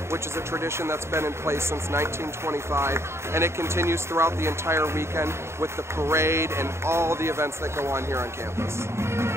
which is a tradition that's been in place since 1925, and it continues throughout the entire weekend with the parade and all the events that go on here on campus.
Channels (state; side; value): late; left; 0.13 ms